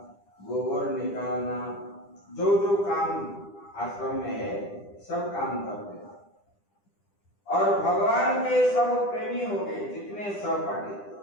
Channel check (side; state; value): right; late; 10 ms